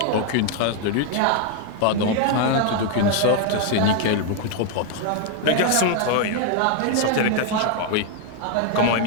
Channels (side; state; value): both; different; correlation 0.00